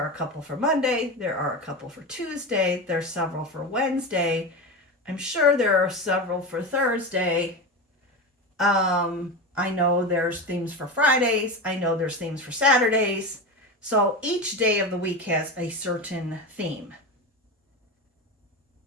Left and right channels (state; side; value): normal; both; correlation 0.22